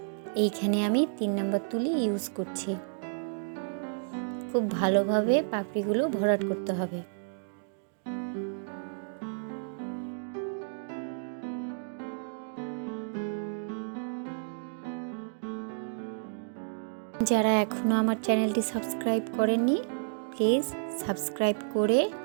এইখানে আমি 3 নম্বর তুলি ইউজ করছি। খুব ভালোভাবে পাপড়িগুলো ভরাট করতে হবে। যারা এখনও আমার চ্যানেলটি সাবস্ক্রাইব করেননি প্লিজ সাবস্ক্রাইব করে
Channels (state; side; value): silent; left; digital silence